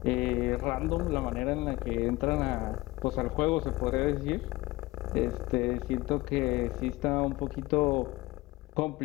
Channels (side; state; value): right; quieter; 20.0 dB